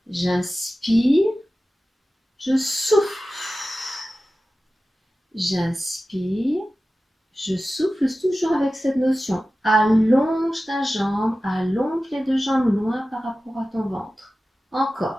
j'inspire, je souffle. J'inspire, je souffle toujours avec cette notion. Allonge ta jambe, allonge les deux jambes loin par rapport à ton ventre.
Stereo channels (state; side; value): normal; both; correlation 0.95